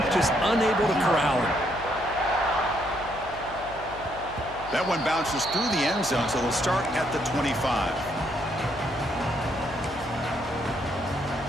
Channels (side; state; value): left; noise; hum, 16 dB below the sound